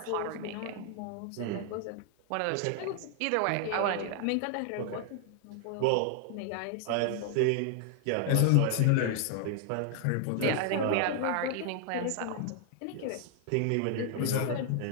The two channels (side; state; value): both; different; correlation 0.00